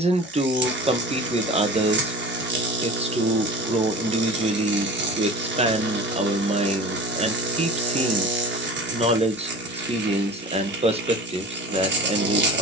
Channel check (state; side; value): normal; both; correlation 0.37